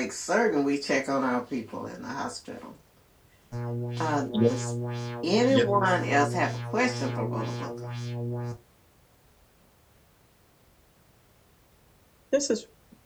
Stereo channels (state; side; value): identical; both; correlation 1.00